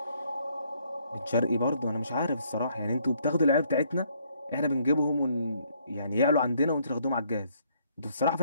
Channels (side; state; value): both; inverted; correlation -0.68